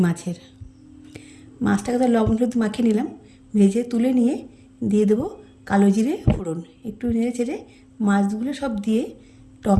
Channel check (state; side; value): identical; both; correlation 1.00